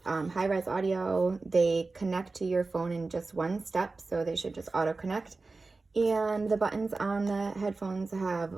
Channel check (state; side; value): quieter; left; 3.7 dB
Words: high-res audio. They connect to your phone in just one step, so they should just auto-connect. And the buttons on the headphones have